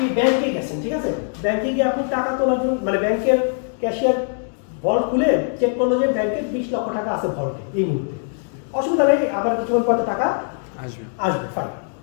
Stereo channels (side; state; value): right; silent; 56 dB below the other